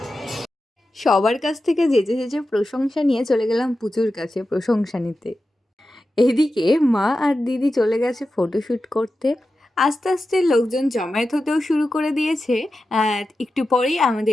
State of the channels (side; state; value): both; normal; correlation 0.92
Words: সবার কাছ থেকে যেচে প্রশংসা নিয়ে চলে গেলাম পুজোর কাছে প্রশংসা নিতে। এদিকে মা আর দিদি চলে গেছে ফটোশ্যুট করতে। আস্তে আস্তে লোকজন জমায়েত হতেও শুরু করে দিয়েছে। একটু পরেই